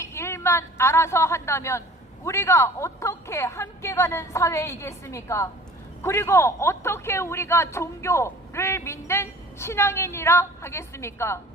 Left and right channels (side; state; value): both; normal; correlation 0.46